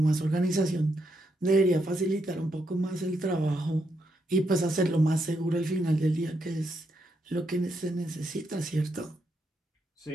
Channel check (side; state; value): both; normal; correlation 0.80